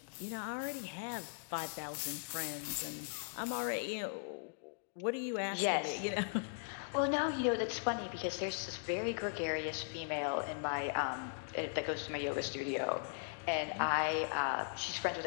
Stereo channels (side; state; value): right; silent; digital silence